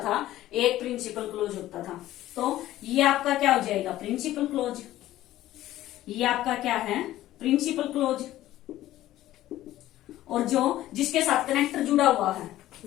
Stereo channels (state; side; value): quieter; right; 14.6 dB